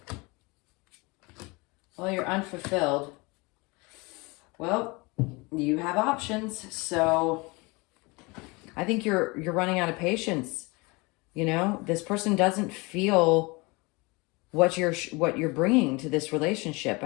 Well, you're unfulfilled. Well, you have options. So I think you're running out of patience. You know, this person doesn't feel what you're bringing to this relationship.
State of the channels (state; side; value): quieter; right; 26.1 dB